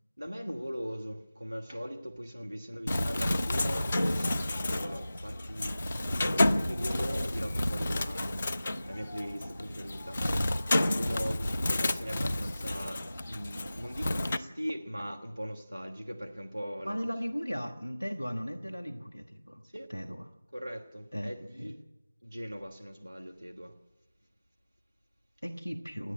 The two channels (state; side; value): inverted; both; correlation -0.96